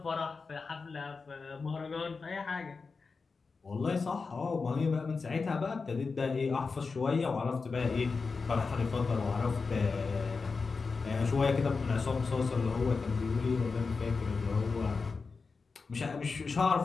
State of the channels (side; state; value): right; quieter; 4.6 dB